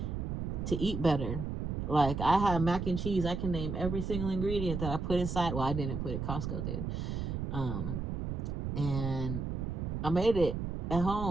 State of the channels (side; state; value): right; noise; rumble, 3 dB below the sound